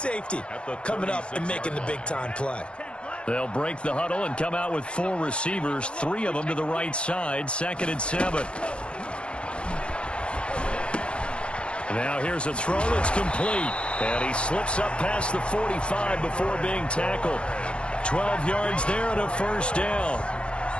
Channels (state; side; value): late; right; 0.057 ms